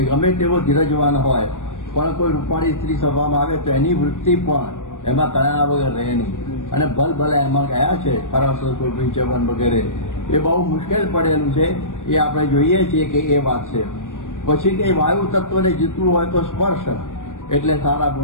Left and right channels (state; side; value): late; right; 0.87 ms